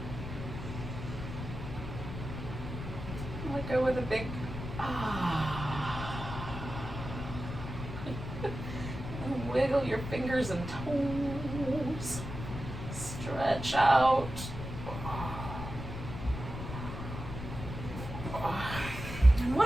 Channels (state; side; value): noise; left; rumble, 7 dB below the sound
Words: Let go with a big and wiggle your fingers and toes. Stretch out. And